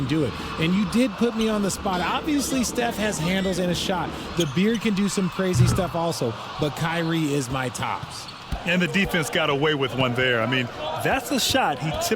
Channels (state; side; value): identical; both; correlation 1.00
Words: do it. And you did put me on the spot. Obviously, Steph has handles and a shot. The Beard can do some crazy stuff also, but Kyrie is my tops. And the defense got away with one there. I mean, that's a shot he